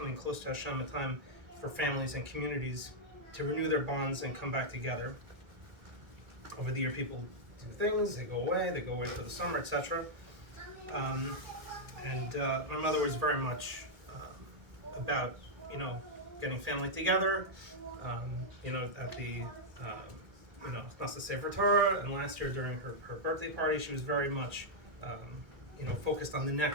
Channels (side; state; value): left; late; 1.9 ms